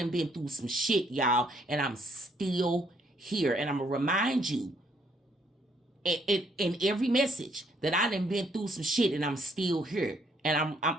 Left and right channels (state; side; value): normal; both; correlation 0.68